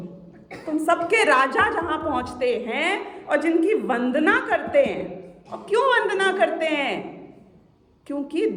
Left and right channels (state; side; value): identical; both; correlation 1.00